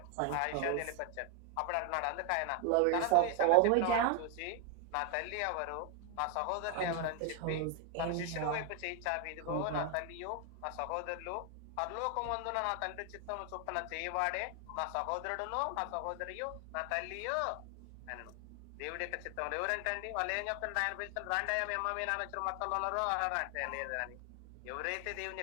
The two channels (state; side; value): different; both; correlation 0.00